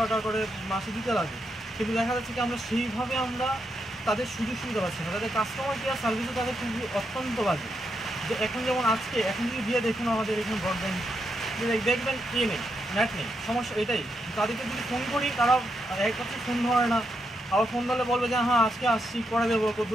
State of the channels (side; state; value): both; normal; correlation 0.82